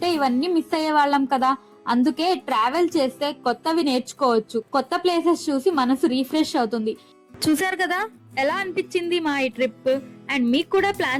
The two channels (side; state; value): both; identical; correlation 1.00